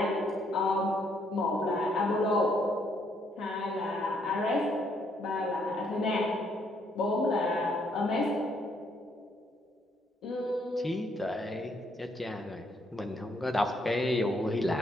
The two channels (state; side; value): normal; both; correlation 0.71